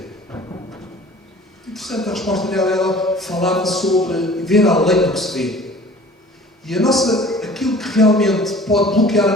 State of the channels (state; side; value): normal; both; correlation 0.47